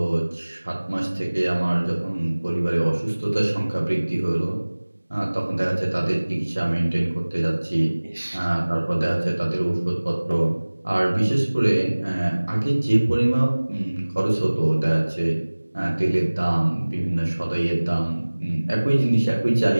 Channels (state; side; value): inverted; both; correlation -1.00